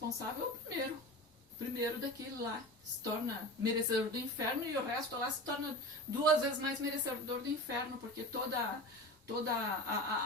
é o primeiro daquele lá, se torna merecedor do inferno, e o resto lá se torna 2 vezes mais merecedor do inferno, porque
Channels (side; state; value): both; normal; correlation 0.30